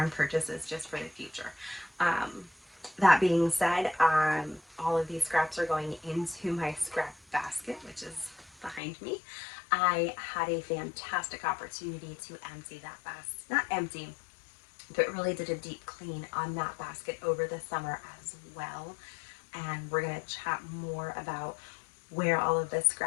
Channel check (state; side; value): drops out; right; at 8.8 s